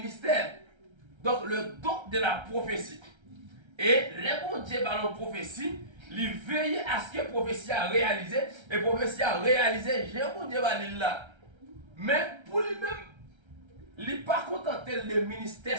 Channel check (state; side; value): late; left; 1.3 ms